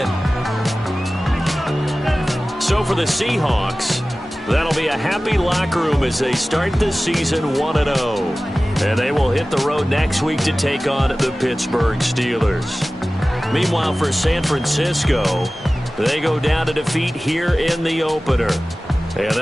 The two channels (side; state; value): both; normal; correlation 0.97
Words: So for the Seahawks, that'll be a happy locker room as they start the season 1-0. And they will hit the road next week to take on the Pittsburgh Steelers. Meanwhile, for San Francisco, they go down to defeat here in the opener. And